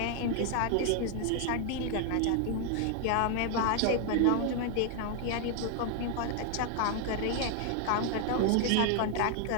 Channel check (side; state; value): both; different; correlation 0.00